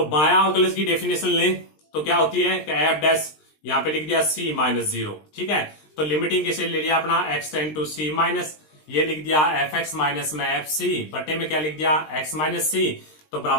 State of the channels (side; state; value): right; late; 20 ms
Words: बायां अवकलज की डेफिनेशन ले तो क्या होती है कि एफ डैश यहां पे लिख दिया सी माइनस 0। ठीक है, तो लिमिटिंग कैसे ले लिया अपना x tend to c minus, ये लिख दिया एफ एक्स माइनस में एफ सी बटे में क्या लिख दिया, एक्स माइनस सी, तो